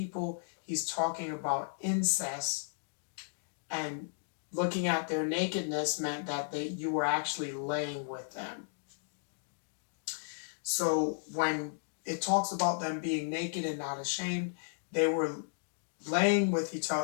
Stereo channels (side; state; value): right; silent; digital silence